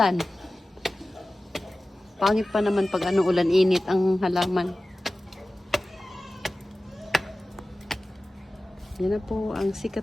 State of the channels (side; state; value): both; normal; correlation 0.96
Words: Pangit pa naman pag ulan init ang halaman. Yan na po ang